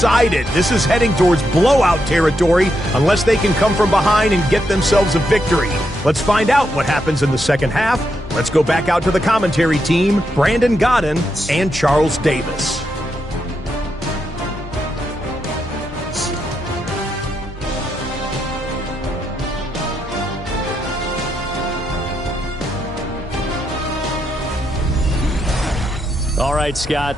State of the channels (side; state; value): both; normal; correlation 0.82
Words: This is heading towards blowout territory unless they can come from behind and get themselves a victory. Let's find out what happens in the 2nd half. Let's go back out to the commentary team, Brandon Godden and Charles Davis. All right, Scott,